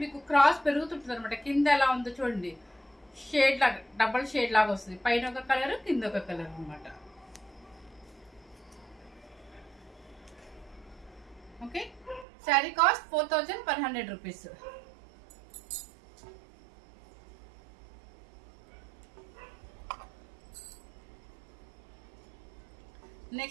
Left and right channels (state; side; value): drops out; left; at 12.2 s